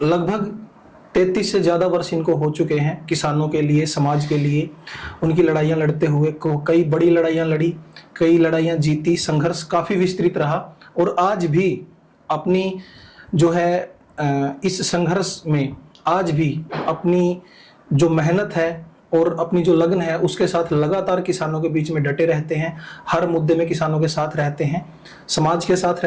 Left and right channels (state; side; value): identical; both; correlation 1.00